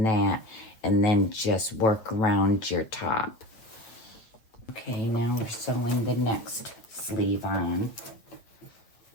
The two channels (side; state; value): right; late; 8.7 ms